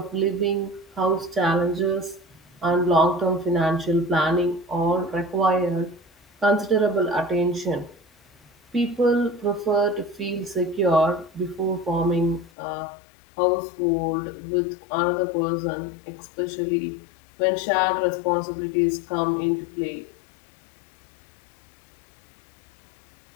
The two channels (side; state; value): right; drops out; at 12.5 s